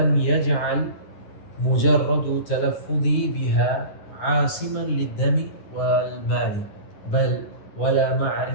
يجعل مجرد تلفظي بها عاصما للدم والمال، بل ولا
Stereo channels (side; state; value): right; late; 10 ms